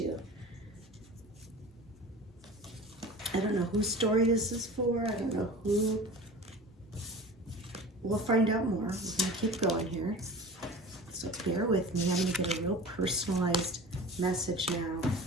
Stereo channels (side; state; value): both; normal; correlation 0.37